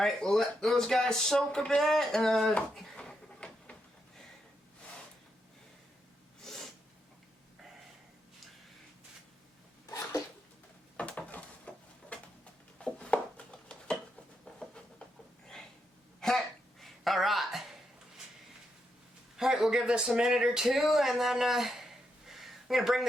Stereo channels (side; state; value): both; normal; correlation 0.82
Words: we'll let those guys soak a bit. Alright. Alright, we'll give this a minute or two, and then I'm going to bring